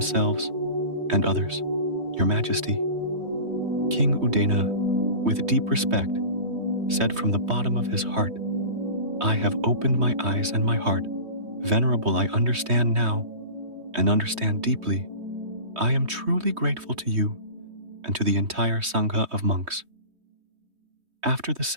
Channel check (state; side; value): late; left; 3.2 ms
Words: and others. Your Majesty." King Udena, with deep respect, said from the bottom of his heart, "I have opened my eyes and my heart. Venerable, I understand now, and understand deeply. I am truly grateful to you and to the entire Sangha of monks." After the